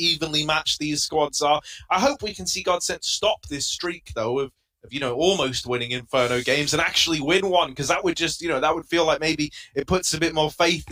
matched these squads are. I hope we can see GODSENT stop this streak, though, of you know, almost winning Inferno games and actually win one, because that would just, you know, that would feel like maybe it puts a bit more faith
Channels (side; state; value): both; identical; correlation 1.00